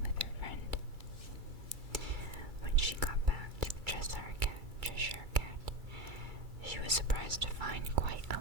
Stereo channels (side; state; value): left; late; 2.3 ms